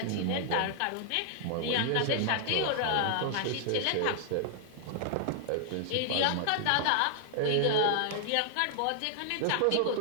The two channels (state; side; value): different; both; correlation 0.00